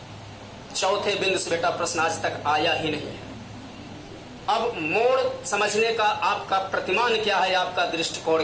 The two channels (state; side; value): identical; both; correlation 1.00